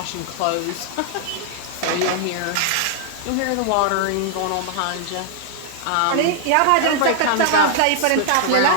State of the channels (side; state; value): both; different; correlation 0.00